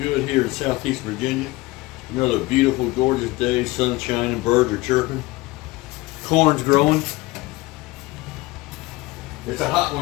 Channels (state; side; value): quieter; right; 21.0 dB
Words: here in Southeast Virginia. Another beautiful, gorgeous day, sun shining, birds are chirping, corn's growing. It's a hot